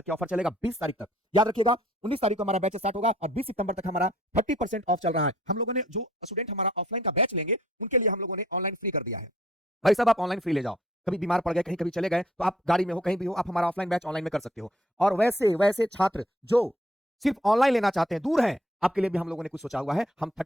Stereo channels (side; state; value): both; normal; correlation 0.61